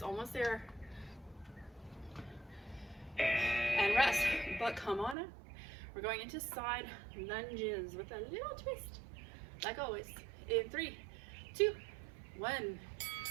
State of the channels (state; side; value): drops out; left; at 5.2 s